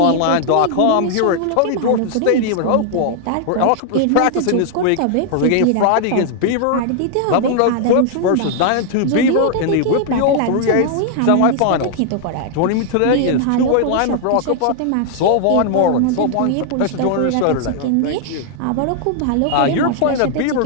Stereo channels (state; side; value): different; both; correlation 0.00